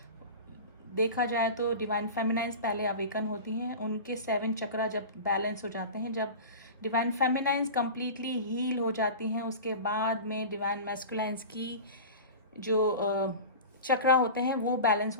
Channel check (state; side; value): inverted; both; correlation -0.33